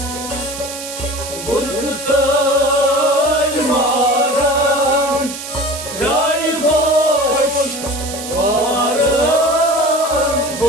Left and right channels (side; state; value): right; noise; hiss, 9 dB below the sound